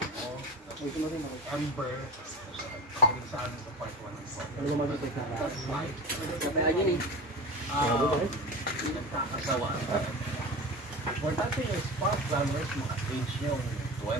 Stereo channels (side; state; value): both; normal; correlation 0.30